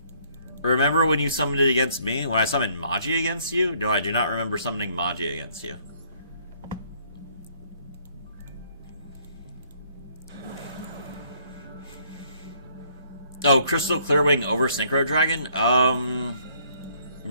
Remember when you summoned it against me? When I summoned Magi against you? No, I do not remember summoning Magi against you. Oh, Crystal Clearwing over Synchro Dragon?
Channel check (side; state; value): both; inverted; correlation -0.64